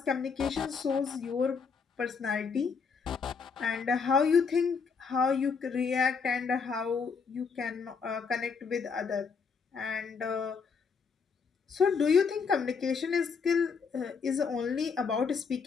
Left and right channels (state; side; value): quieter; right; 5.5 dB